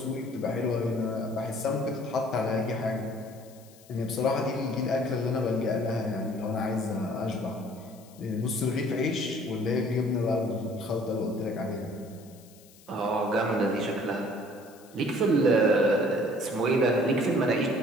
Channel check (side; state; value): left; noise; hiss, 25 dB below the sound